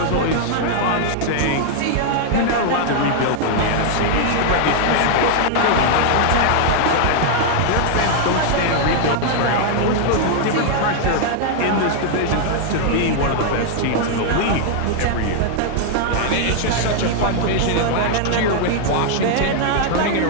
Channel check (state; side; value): different; both; correlation 0.00